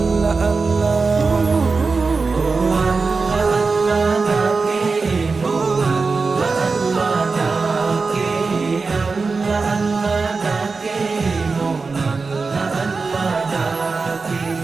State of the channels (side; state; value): left; quieter; 4.3 dB